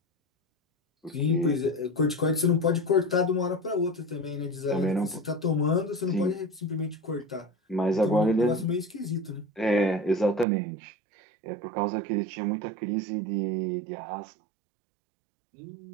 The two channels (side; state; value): left; drops out; at 10.5 s